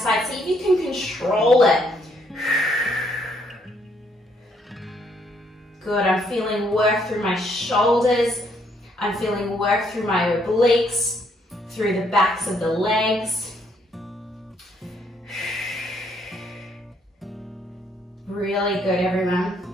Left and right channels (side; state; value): both; normal; correlation 0.70